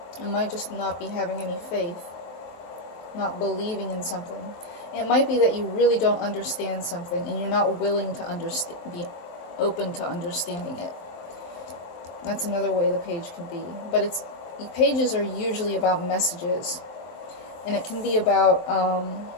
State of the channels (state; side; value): late; right; 23 ms